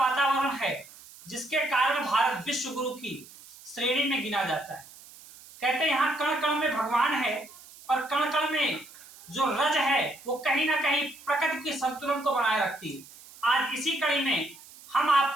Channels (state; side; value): noise; right; hiss, 20 dB below the sound